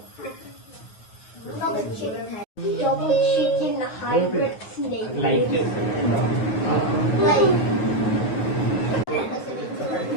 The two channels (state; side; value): late; right; 9.4 ms